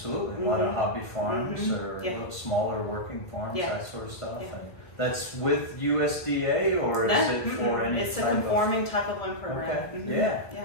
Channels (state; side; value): late; right; 1.5 ms